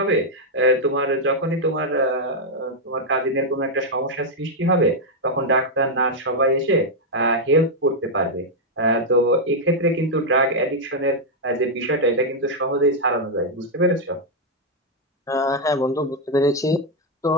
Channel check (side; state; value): both; normal; correlation -0.01